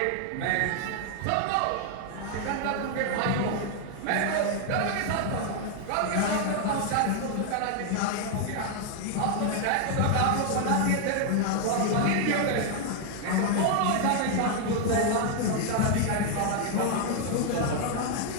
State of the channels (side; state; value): both; different; correlation 0.00